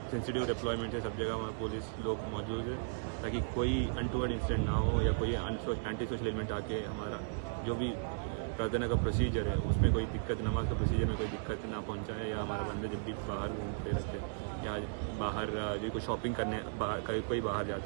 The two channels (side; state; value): left; silent; digital silence